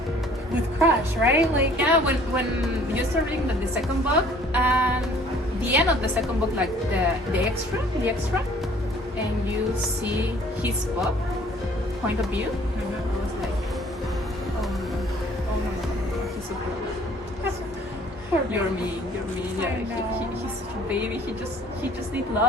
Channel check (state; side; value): normal; both; correlation 0.55